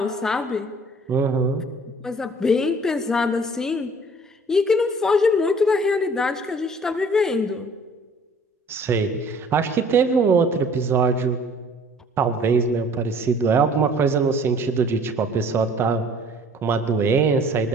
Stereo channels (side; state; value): both; normal; correlation 0.53